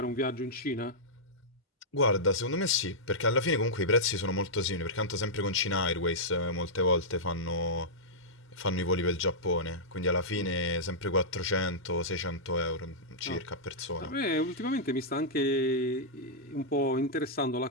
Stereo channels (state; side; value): normal; both; correlation -0.11